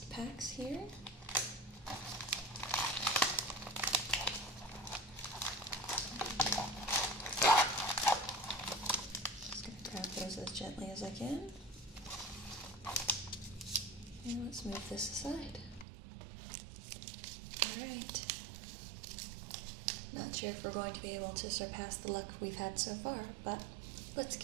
packs here. Just going to grab those as gently as I can. And let's move this aside. Alright. Not sure if we're going to be able to surpass the luck we've had so far, but let's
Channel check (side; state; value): left; drops out; at 15.9 s